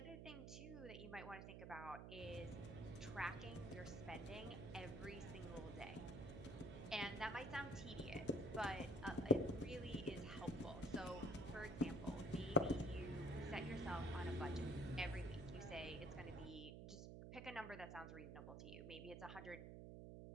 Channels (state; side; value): noise; right; hum, 8 dB below the sound